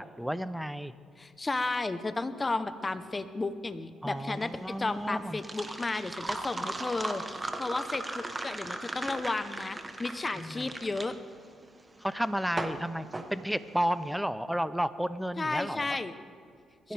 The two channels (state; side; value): normal; both; correlation 0.95